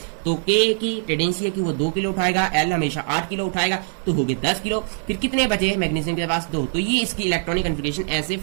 तो K की टेंडेंसी है कि वो 2 किलो उठाएगा, L हमेशा 8 किलो उठाएगा, तो हो गए 10 किलो। फिर कितने बचे मैग्नीशियम के पास, 2। तो ये इसकी इलेक्ट्रॉनिक कॉन्फ़िगरेशन ऐसे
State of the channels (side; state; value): left; silent; 60 dB below the other